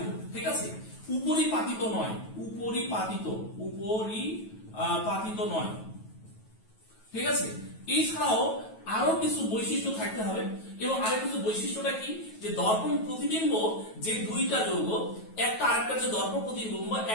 ঠিক আছে। উপরিপাতিত নয়, উপরিপাতিত নয়, ঠিক আছে। এছাড়াও আরো কিছু বৈশিষ্ট্য থাকতে হবে। এবং আরো কিছু বৈশিষ্ট্যটা কি? যে দর্পণ প্রতিবিম্ব যে দুইটা যৌগ, একটা আরেকটা যে দর্পণ প্রতিবিম্ব,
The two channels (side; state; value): right; late; 9.3 ms